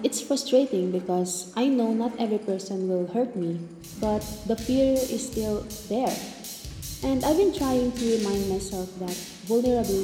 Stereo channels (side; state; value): both; identical; correlation 1.00